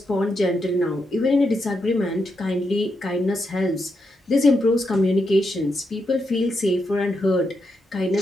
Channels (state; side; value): normal; both; correlation 0.83